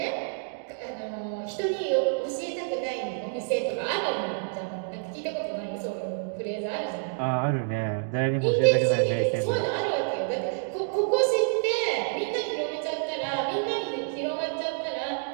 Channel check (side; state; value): left; silent; digital silence